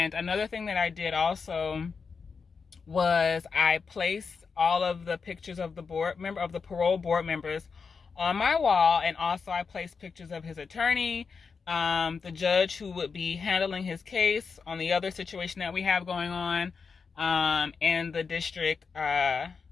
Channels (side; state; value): right; quieter; 5.3 dB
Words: another thing that I did also was I placed all of the pictures of the parole board members on my wall, and also I placed pictures of his attorney, the judge who would be handling his case on the other situation that we have going on, and the district